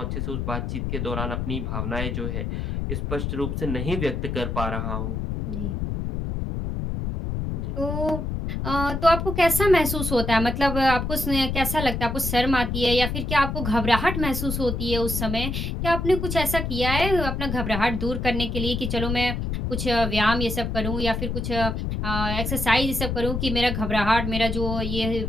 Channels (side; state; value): left; noise; rumble, 2 dB below the sound